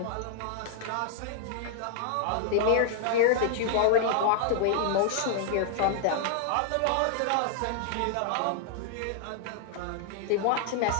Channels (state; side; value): different; both; correlation -0.01